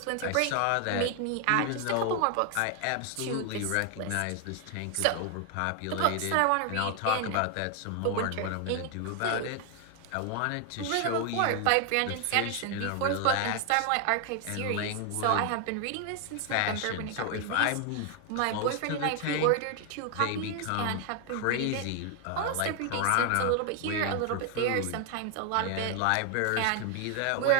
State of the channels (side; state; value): both; different; correlation 0.00